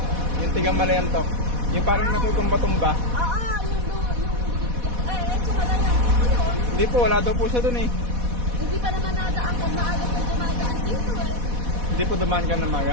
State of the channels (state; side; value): late; left; 4.1 ms